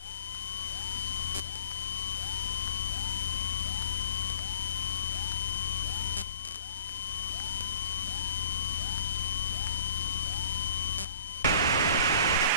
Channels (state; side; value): inverted; both; correlation -0.47